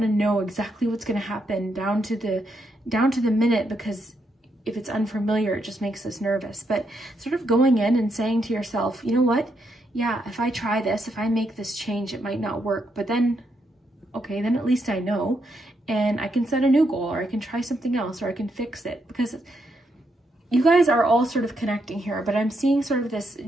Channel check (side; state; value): both; normal; correlation 0.79